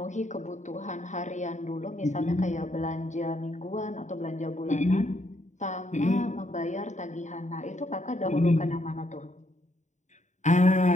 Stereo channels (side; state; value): right; late; 0.34 ms